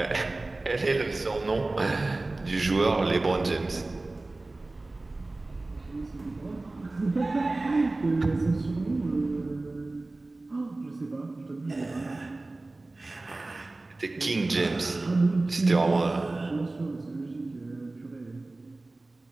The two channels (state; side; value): quieter; left; 3.1 dB